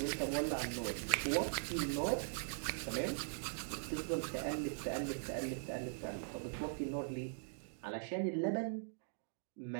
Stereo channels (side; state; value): left; silent; digital silence